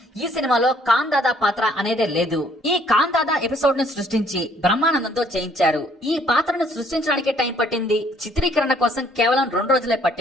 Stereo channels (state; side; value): normal; both; correlation 0.63